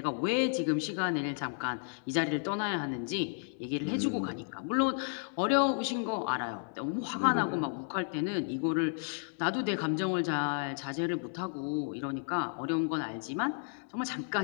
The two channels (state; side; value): silent; right; 56 dB below the other